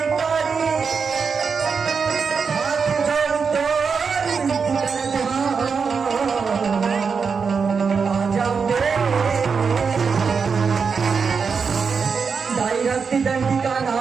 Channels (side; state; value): left; quieter; 5.6 dB